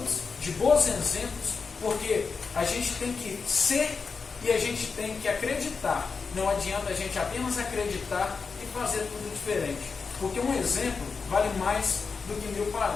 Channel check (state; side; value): quieter; right; 5.1 dB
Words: de bons exemplos, porque a gente tem que ser e a gente tem que acreditar. Não adianta a gente apenas acreditar e fazer tudo diferente, porque um exemplo vale mais do que 1000